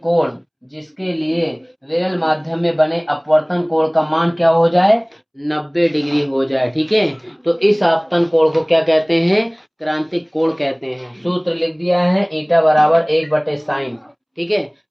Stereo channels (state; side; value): identical; both; correlation 1.00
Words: कोण जिसके लिए विरल माध्यम में बने अपवर्तन कोण का मान क्या हो जाए, 90 डिग्री हो जाए। ठीक है, तो इस आपतन कोण को क्या कहते हैं, क्रांतिक कोण कहते हैं। सूत्र लिख दिया है ईटा बराबर 1/sin। ठीक है,